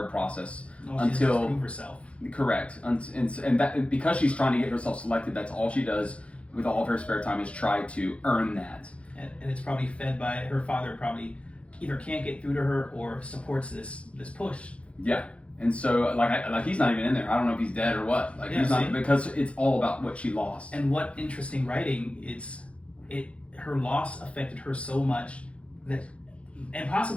process until... She prove herself. Correct. And that because she's trying to get herself selected, that's all she does with all of her spare time is try to earn that. And it's probably fed by her father. Probably either can't get through to her or supports this push. Yeah. And so, like he's not even in there. I don't know if he's dead or what. He's not, because it's all about what she lost. And what interesting writing! Her loss affected her so much that, and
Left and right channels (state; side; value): late; right; 0.062 ms